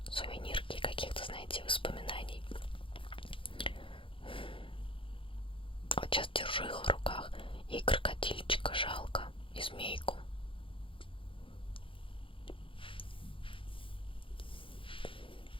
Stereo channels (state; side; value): late; right; 0.25 ms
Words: сувенирки, каких-то, знаете, воспоминаний. Вот сейчас держу их в руках. И крокодильчика жалко, и змейку.